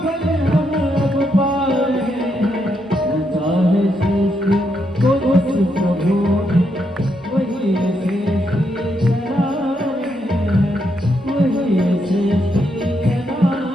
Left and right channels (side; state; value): both; normal; correlation 0.79